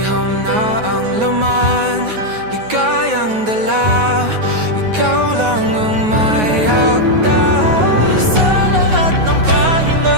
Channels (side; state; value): left; late; 9.4 ms